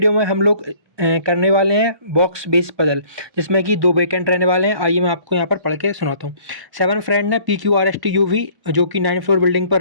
में हम लोग करने वाले हैं बॉक्स बेस पजल, जिसमें कि दो वेकेंट रहने वाले हैं। आइए मैं आपको यहाँ पर पढ़ के सुनाता हूँ। 7 फ्रेंड है PQRSTUV, जो कि 9th फ्लोर बिल्डिंग पर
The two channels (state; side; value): late; left; 1.1 ms